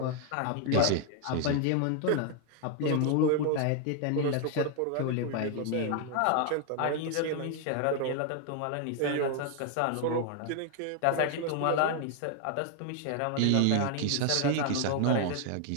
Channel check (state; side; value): different; both; correlation 0.00